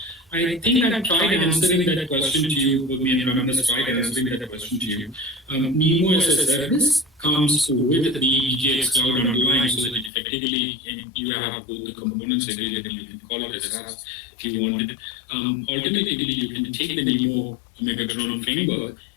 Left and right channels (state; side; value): drops out; right; at 10.1 s